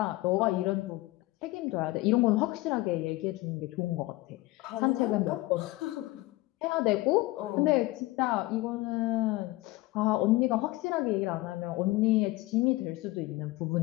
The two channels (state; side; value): quieter; right; 19.6 dB